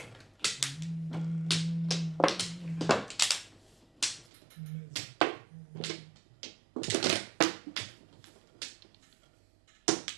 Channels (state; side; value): drops out; left; at 4.2 s